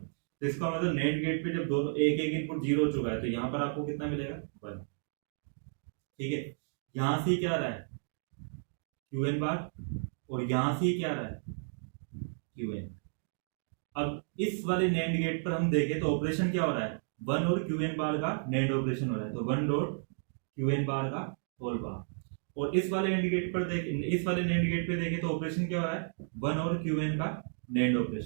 तो इसका मतलब NAND गेट पे जब दोनों एक एक इनपुट 0 हो चुका है तो यहाँ पर आपको कितना मिलेगा 1, ठीक है। यहाँ से क्या आ रहा है QN बार, और यहाँ से क्या आ रहा है QN। अब इस वाले NAND गेट पर हम देखें तो ऑपरेशन क्या हो रहा है, 1 और QN बार का NAND ऑपरेशन हो रहा है, तो 1 डॉट QN बार का होल बार। और इस वाले NAND गेट पर इस वाले NAND गेट पे देखें तो ऑपरेशन क्या हो रहा है 1 और QN का NAND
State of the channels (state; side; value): silent; left; digital silence